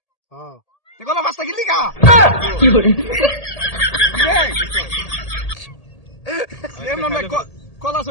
কলা পাঁচটা কিনলি কা কলা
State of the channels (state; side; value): late; right; 1.8 ms